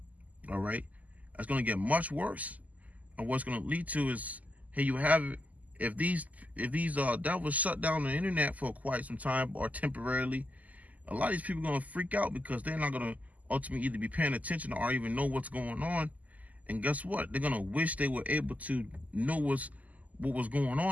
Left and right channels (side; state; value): left; late; 0.076 ms